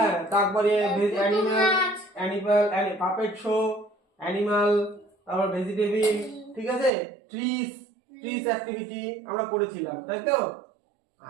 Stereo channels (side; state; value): left; drops out; at 6.9 s